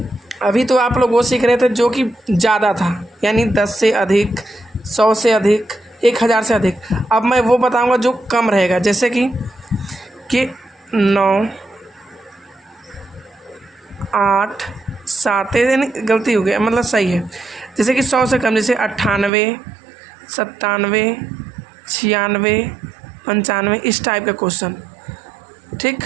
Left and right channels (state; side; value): drops out; left; at 19.3 s